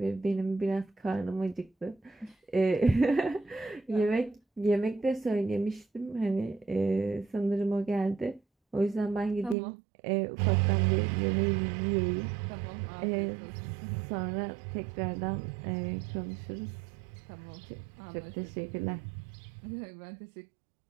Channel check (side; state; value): left; drops out; at 9.6 s